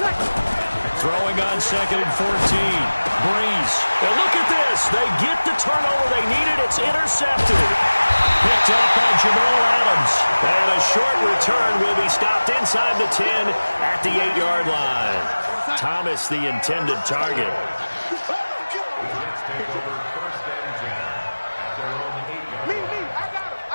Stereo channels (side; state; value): both; inverted; correlation -1.00